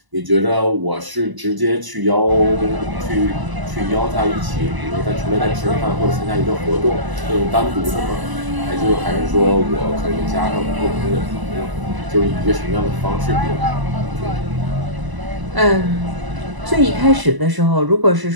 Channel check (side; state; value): left; late; 1.0 ms